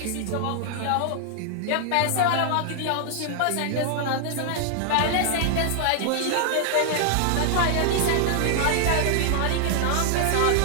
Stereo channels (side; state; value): both; different; correlation -0.01